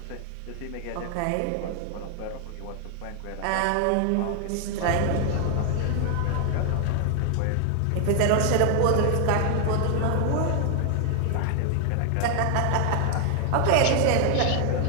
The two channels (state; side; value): different; both; correlation 0.00